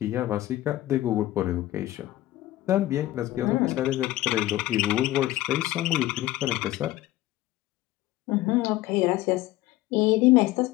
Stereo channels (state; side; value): quieter; right; 15.8 dB